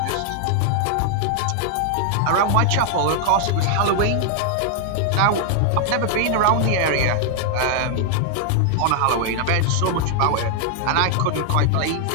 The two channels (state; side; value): different; both; correlation 0.00